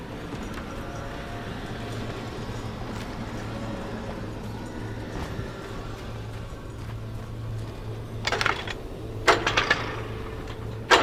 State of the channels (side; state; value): both; identical; correlation 1.00